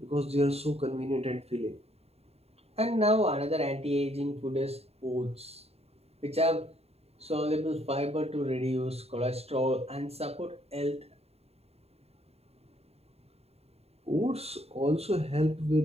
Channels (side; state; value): left; late; 0.30 ms